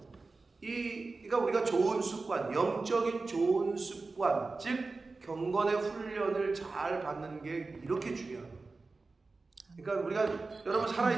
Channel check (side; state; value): left; quieter; 3.8 dB